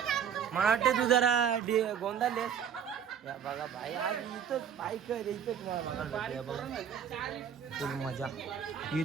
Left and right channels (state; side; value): quieter; left; 8.0 dB